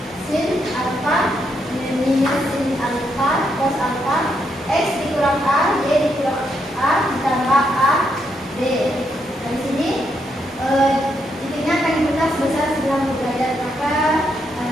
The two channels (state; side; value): normal; both; correlation 0.78